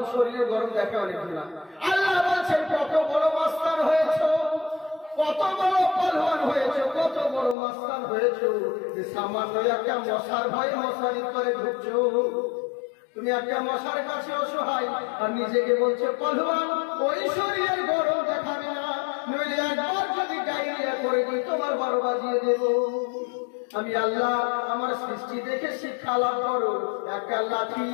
শরীরে গরম দেখে অনেক না। আল্লাহ বলছেন, কত বড় মাস্তান হয়েছ, কত বড় পালওয়ান হয়েছ, কত বড় মাস্তান হয়েছ, যে সামান্য একটা মশার ভয়ে মশারি করে ঢুকছো। তুমি একটা মশার কাছে অসহায় আর নিজেকে বলছো পালওয়ান। ওই শরীরের গরম দেখাবে না, নইলে একবার যদি ডায়রিয়া করে দিই তোমার 12 বাজিয়ে দেব। আমি আল্লাহ আমার সৃষ্টি দেখে শিক্ষা লাভ করো। একটা লাঠি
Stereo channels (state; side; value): drops out; right; at 7.6 s